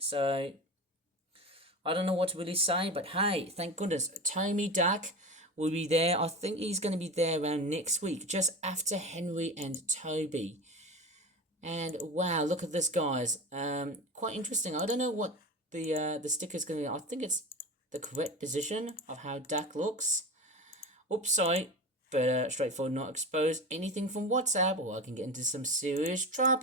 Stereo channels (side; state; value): both; normal; correlation 0.27